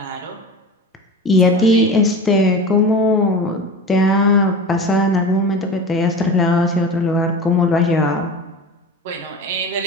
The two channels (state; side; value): normal; both; correlation 0.32